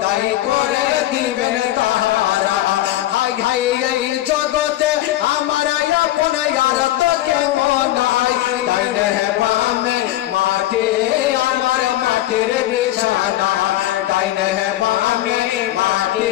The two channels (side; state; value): right; quieter; 14.7 dB